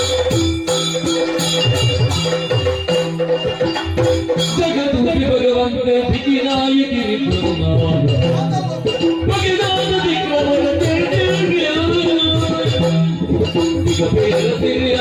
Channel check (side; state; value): both; identical; correlation 1.00